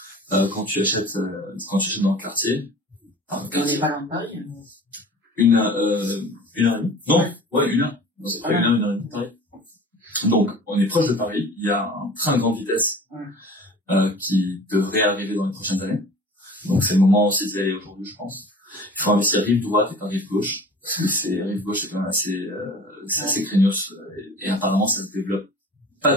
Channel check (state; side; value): normal; both; correlation 0.42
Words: Quand tu achètes dans le quartier. On n'est pas loin de Paris. Une heure et demie. Non, ouais, une heure. Non, c'est pas une heure et demie de Paris. Donc, on est proche de Paris. Il y a un train de grande vitesse qui devrait arriver dans les prochaines années. Donc, c'est le moment aussi d'y aller aujourd'hui, je pense. Il faut investir rive droite et pas rive gauche. Parce que rive gauche, c'est quand même assez craignos. Et apparemment, ça se développe